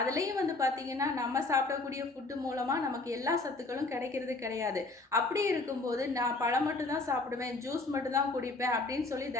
வந்து பார்த்திங்கன்னா நம்ம சாப்பிடக்கூடிய ஃபுட்டு மூலமாக நமக்கு எல்லா சத்துக்களும் கிடைக்கிறது கிடையாது. அப்படி இருக்கும்போது நான் பழம் மட்டும்தான் சாப்பிடுவேன், ஜூஸ் மட்டும்தான் குடிப்பேன் அப்படின்னு சொல்லி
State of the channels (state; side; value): quieter; right; 3.4 dB